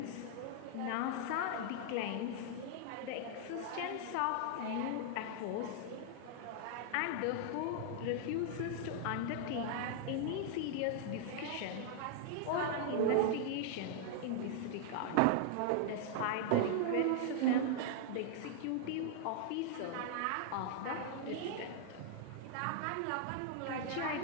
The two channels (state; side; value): different; both; correlation -0.01